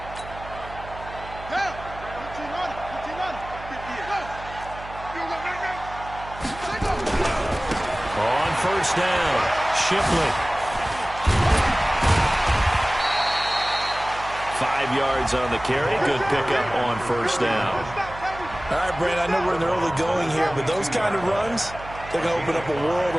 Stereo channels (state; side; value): noise; right; hum, 15 dB below the sound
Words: On first down, Shipley. 5 yards on the carry. Good pickup on first down. All right, Brent, I know we're in the early going here, but those kind of runs, they're going to open up a world